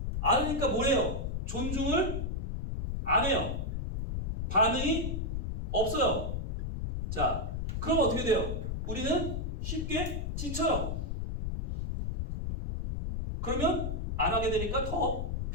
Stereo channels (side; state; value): left; noise; rumble, 2 dB below the sound